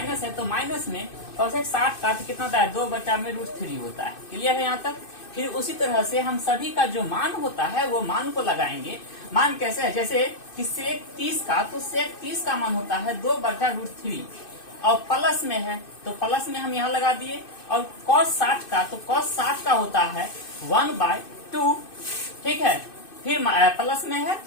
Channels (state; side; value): late; right; 2.6 ms